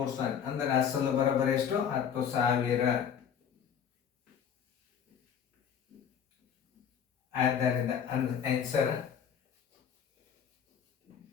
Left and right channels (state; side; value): quieter; right; 8.0 dB